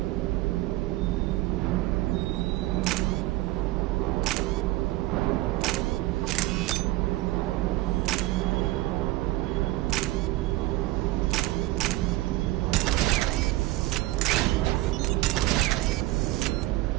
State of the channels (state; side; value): quieter; left; 18.2 dB